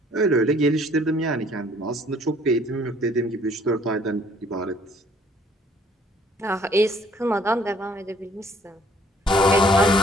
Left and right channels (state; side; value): normal; both; correlation 0.60